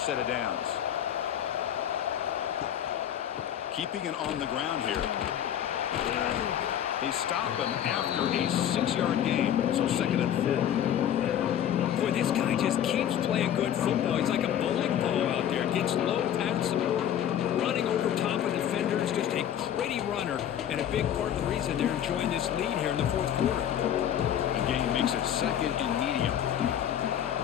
set of downs. Keeping it on the ground here. They stop him after a 6-yard gain, so 2nd and 4. Boy, this guy just keeps playing good football. He's like a bowling ball out there. Gets low pad support, running over top of defenders. Just a gritty runner, and a big part of the reason they're enjoying this lead here in the 4th quarter. The game makes it 2nd and medium.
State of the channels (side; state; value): right; quieter; 10.2 dB